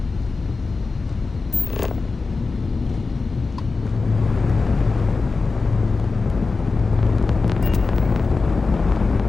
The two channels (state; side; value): quieter; right; 4.1 dB